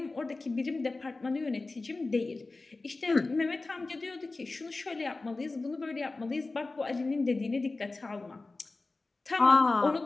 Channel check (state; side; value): quieter; right; 3.4 dB